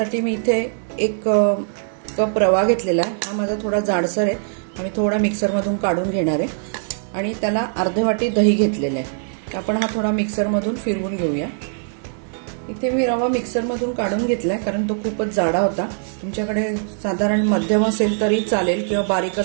मी इथे एक कप रवा घेतलेला आहे। हा माझा थोडा जाडसर आहे आणि थोडा मिक्सर मधून काढून घेणार आहे आणि त्याला अर्धी वाटी दही घेतलेले आहे। आपण हा थोडा मिक्सर मधून फिरवून घेऊया। इथे मी रवा मिक्सर मधून काढून घेतलाय कारण तो खूपच जाडा होता। तुमच्याकडे साधारण मध्यम असेल तरी चालेल किंवा बारीक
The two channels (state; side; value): silent; left; 65 dB below the other